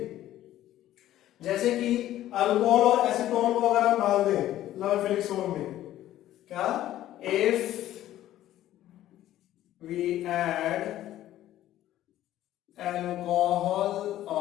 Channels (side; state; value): right; quieter; 13.4 dB